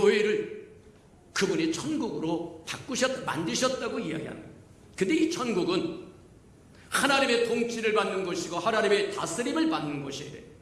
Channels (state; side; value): identical; both; correlation 1.00